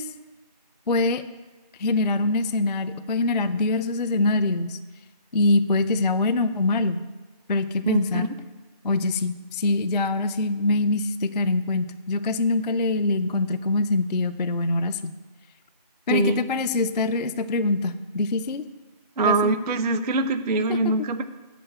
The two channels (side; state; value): both; inverted; correlation -0.52